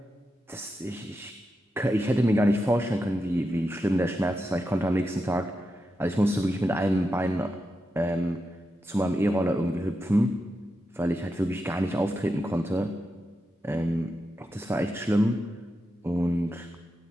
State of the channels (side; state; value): both; normal; correlation 0.88